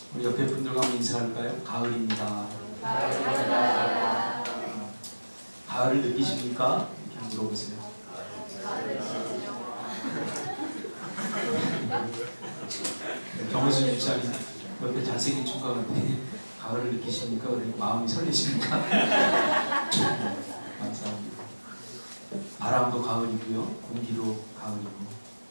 우리 옆에 분들과 한번 인사할까요? 가을입니다. 가을을 느끼십니까? 이렇게 물어보세요. 정우수 집사님 옆에 잘생긴 총각한테 가을을 느끼십니까? 그러니 마음이 설레십니까? 감사합니다. 바람도 가을이고요, 공기도 가을이고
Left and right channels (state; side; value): inverted; both; correlation -1.00